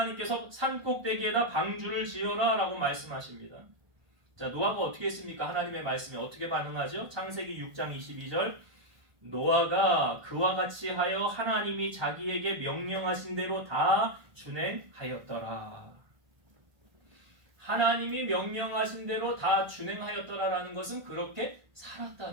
산 꼭대기에다 방주를 지어라 라고 말씀하십니다. 자, 노아가 어떻게 했습니까? 하나님의 말씀에 어떻게 반응하죠? 창세기 6장 22절. 노아가 그와 같이 하여 하나님이 자기에게 명령하신 대로 다 준행하였더라. 하나님이 명령하신 대로 다 준행하였더라라는 것은 그렇게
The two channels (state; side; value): late; left; 1.4 ms